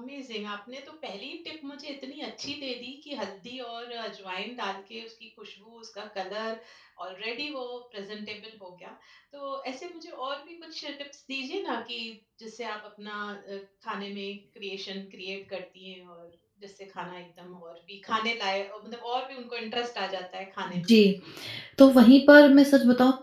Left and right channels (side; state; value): both; identical; correlation 1.00